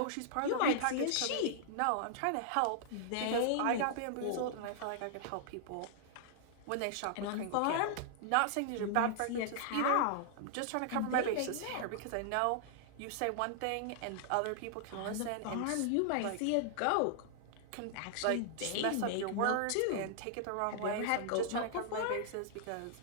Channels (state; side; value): different; both; correlation -0.01